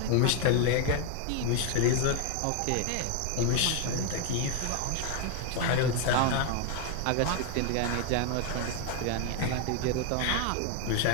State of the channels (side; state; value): both; different; correlation 0.01